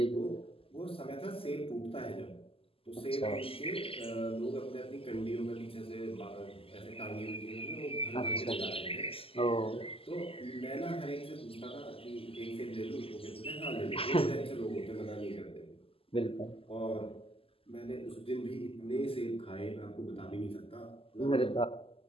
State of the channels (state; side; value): late; right; 0.27 ms